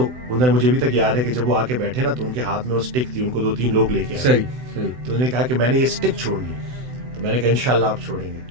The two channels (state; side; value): late; left; 7.9 ms